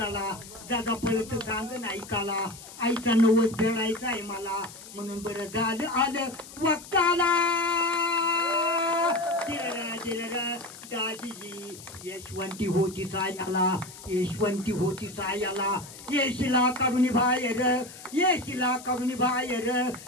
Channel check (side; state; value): left; noise; hiss, 16 dB below the sound